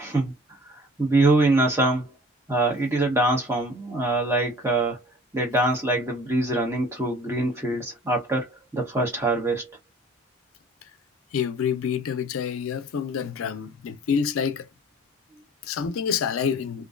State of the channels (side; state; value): both; normal; correlation 0.47